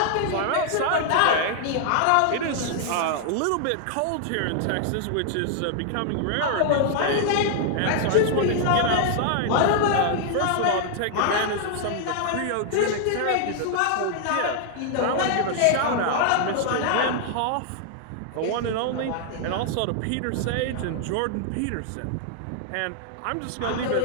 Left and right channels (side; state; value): both; different; correlation -0.01